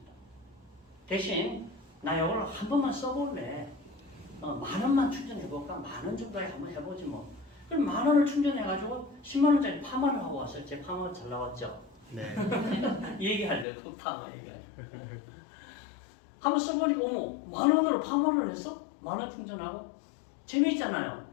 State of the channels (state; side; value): drops out; right; at 13.7 s